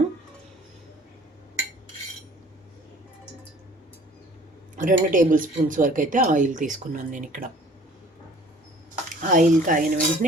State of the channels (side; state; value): both; normal; correlation 0.51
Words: 2 టేబుల్ స్పూన్స్ వరకు అయితే ఆయిల్ తీసుకున్నాను నేను ఇక్కడ. ఆయిల్ కాగిన